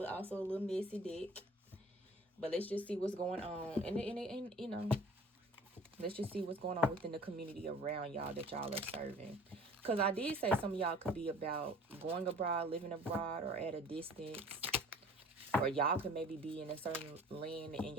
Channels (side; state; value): both; normal; correlation 0.48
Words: also a little messy deck. But let's just see what's going on, and you know, let's just see what's going on within the community around y'all that y'all are serving. Because I did say some of y'all could be about going abroad, living abroad, or at a distance. Or y'all could maybe be in a certain land and